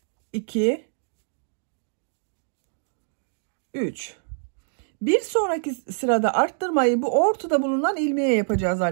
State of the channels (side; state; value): left; silent; digital silence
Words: 2, 3. Bir sonraki sırada arttırmayı bu ortada bulunan ilmeğe yapacağız